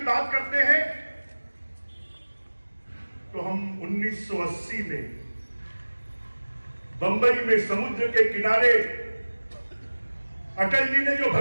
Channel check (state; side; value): inverted; both; correlation -1.00